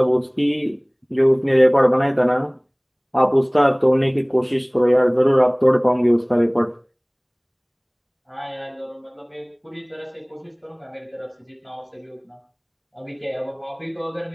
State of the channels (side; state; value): both; identical; correlation 1.00